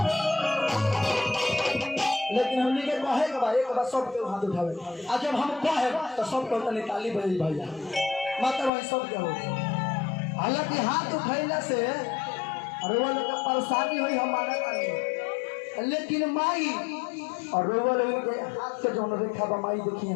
लेकिन हमने के कहे के भाई एक बार सब के हाथ उठावे आज जब हम कहे तो सब को तनी ताली बजाई भैया मतलब वही सब के हो हालांकि हाथ उठैला से अरे वो लोग परेशानी हुई हमारा नहीं लेकिन माई और रोवल उनके हाथ के जौन रेखा बा माई देखिए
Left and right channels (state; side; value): drops out; right; at 8.7 s